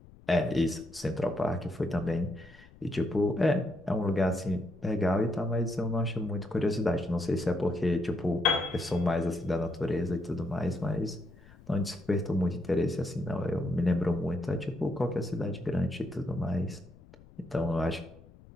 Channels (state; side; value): noise; left; rumble, 23 dB below the sound